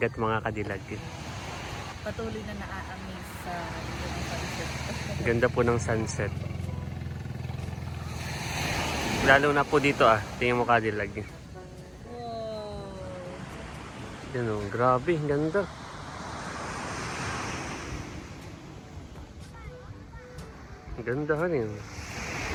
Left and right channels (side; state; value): both; identical; correlation 1.00